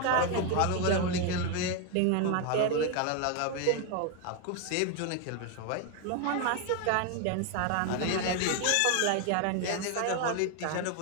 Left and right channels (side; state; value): both; different; correlation 0.01